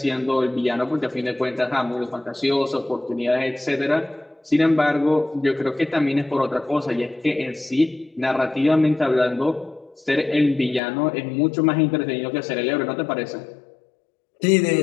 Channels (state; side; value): drops out; right; at 10.8 s